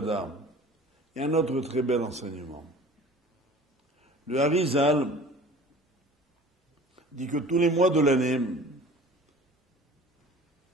il y a un autre très bel enseignement. Le Harizal dit que tous les mois de l'année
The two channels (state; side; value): normal; both; correlation 0.44